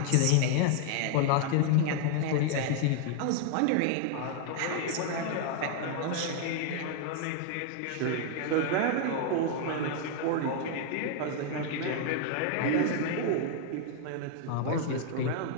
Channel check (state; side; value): different; both; correlation 0.00